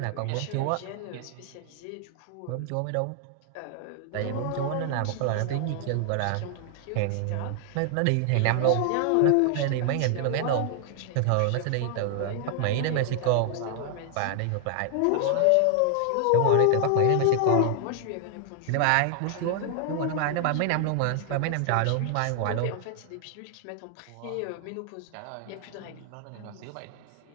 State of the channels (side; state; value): both; different; correlation 0.00